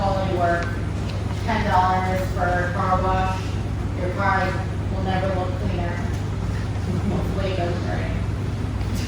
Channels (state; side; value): identical; both; correlation 1.00